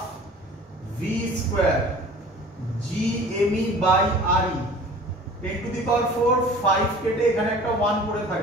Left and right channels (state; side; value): normal; both; correlation 0.45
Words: V square G ME by R E 10 to the power 4 5 কেটে এখানে একটা 1 পড়ে